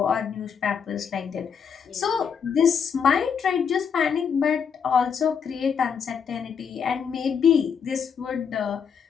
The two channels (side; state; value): right; quieter; 6.8 dB